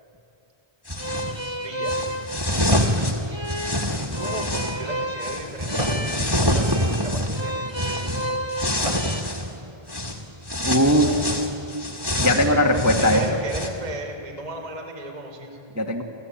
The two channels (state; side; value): late; left; 1.1 ms